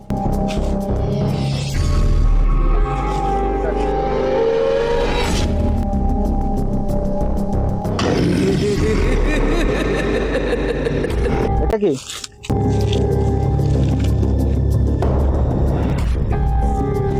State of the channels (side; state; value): both; identical; correlation 1.00